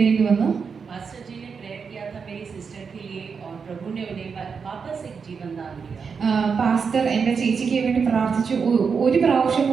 വന്നു. पास्टर जी ने प्रेयर किया था मेरी सिस्टर के लिए और प्रभु ने उन्हें वापस एक जीवन दान दिया. പാസ്റ്റർ എൻ്റെ ചേച്ചിക്ക് വേണ്ടി പ്രാർത്ഥിച്ചു. ഒരു പ്രാവശ്യം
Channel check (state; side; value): quieter; left; 5.8 dB